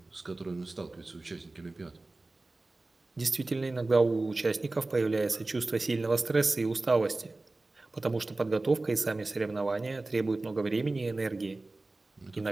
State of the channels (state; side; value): quieter; left; 3.1 dB